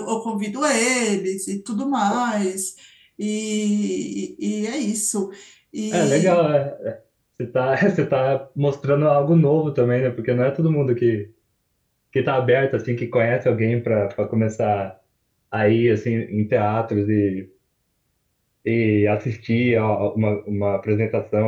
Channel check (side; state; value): both; identical; correlation 1.00